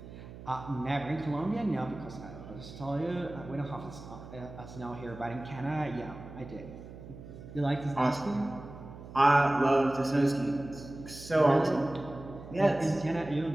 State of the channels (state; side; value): noise; right; hum, 14 dB below the sound